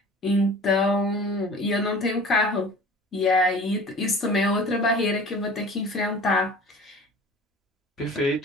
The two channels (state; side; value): normal; both; correlation 0.42